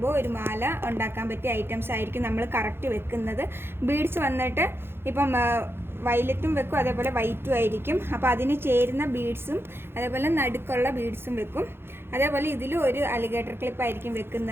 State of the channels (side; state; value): left; late; 0.11 ms